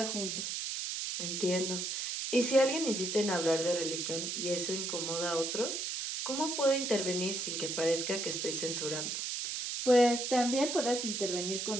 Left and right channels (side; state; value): right; noise; hiss, 3 dB below the sound